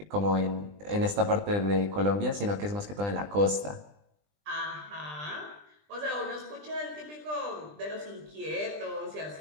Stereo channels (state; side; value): late; left; 20 ms